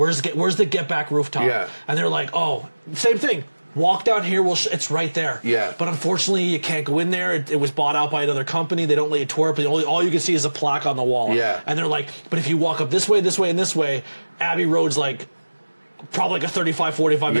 the Get Back rooftop? Yeah. And they're like, oh, same thing. Walk down here, it's right there. Yeah. But unfortunately, you can't go in there. It was bought out by another company. They don't let you tour it, but all you can see is a plaque on the wall. Yeah. And they're like, but if you walk up this way, and this way, Abbey Road's like, probably like a 35, 45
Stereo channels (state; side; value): inverted; both; correlation -1.00